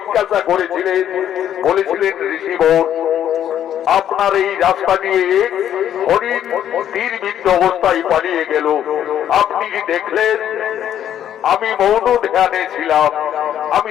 করেছিলেন। বলেছিলেন ঋষিবর আপনার এই রাস্তা দিয়ে হরিণ তীরবিদ্ধ অবস্থায় পালিয়ে গেল, আপনি কি দেখলেন? আমি মৌন ধ্যানে ছিলাম। আমি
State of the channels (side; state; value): right; quieter; 10.4 dB